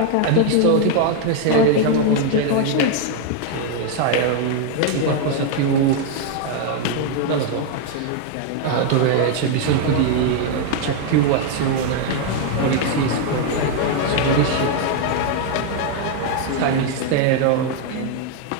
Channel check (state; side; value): different; both; correlation 0.00